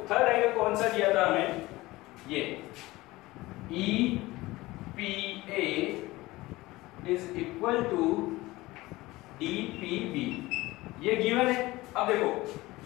थर्ड एंगल कौन सा दिया था हमें, ये EPA is equal to DPB, ये गिवन है. अब देखो,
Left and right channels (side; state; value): right; quieter; 19.5 dB